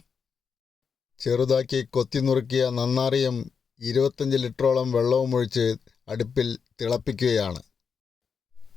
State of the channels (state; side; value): quieter; right; 6.1 dB